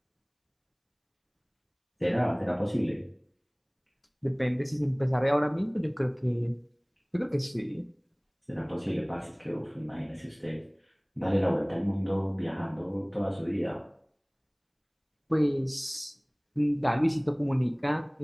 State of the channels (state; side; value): identical; both; correlation 1.00